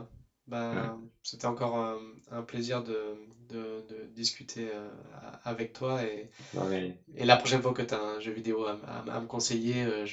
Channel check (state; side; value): identical; both; correlation 1.00